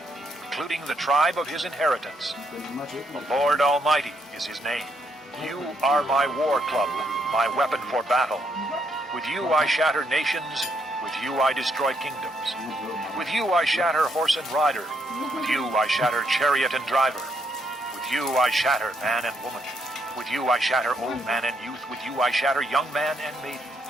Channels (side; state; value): both; normal; correlation 0.74